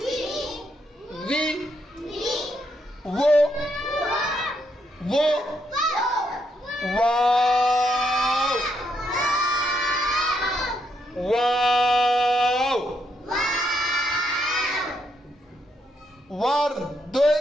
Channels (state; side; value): normal; both; correlation 0.77